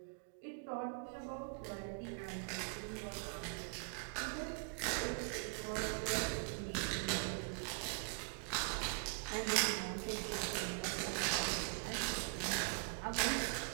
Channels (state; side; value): quieter; left; 38.9 dB